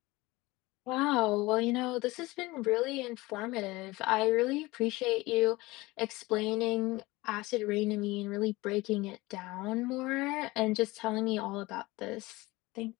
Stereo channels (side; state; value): right; quieter; 20.9 dB